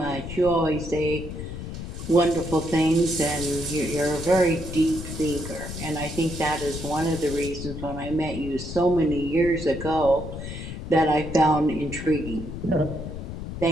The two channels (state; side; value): noise; left; rumble, 8 dB below the sound